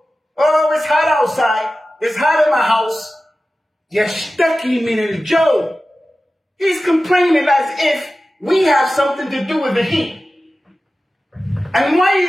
it's hot outside. It's hot in my house. Yashtaki min al-jaw. He's complaining as if we have something to do with the heat. And why are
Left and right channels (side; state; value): both; normal; correlation 0.95